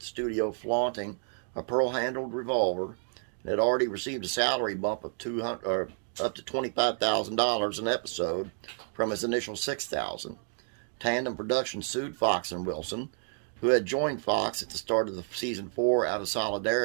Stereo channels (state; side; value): silent; left; digital silence